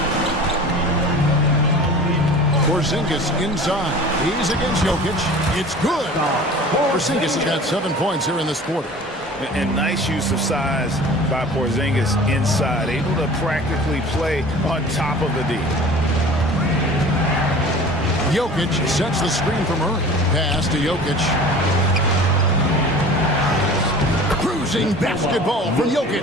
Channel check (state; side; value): normal; both; correlation 0.41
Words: Porzingis inside. He's against Jokic. It's good. Porzingis has got 7 points here in this quarter. And nice use of size by Porzingis inside. Able to practically play on top of the D. Jokic sets the screen for Murray. Pass to Jokic. Cruising basketball from